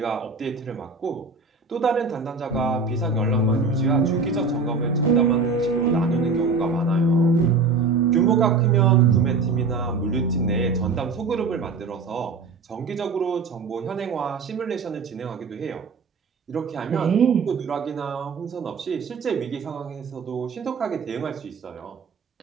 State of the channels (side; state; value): left; quieter; 4.4 dB